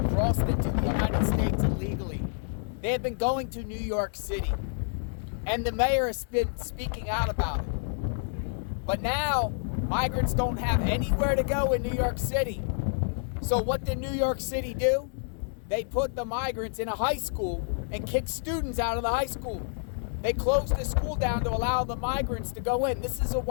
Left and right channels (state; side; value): silent; right; digital silence